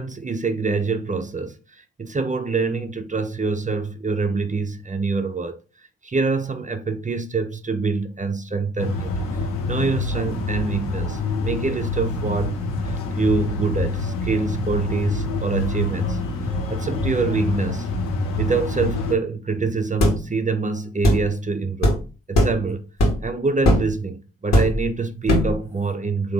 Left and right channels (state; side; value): normal; both; correlation 0.59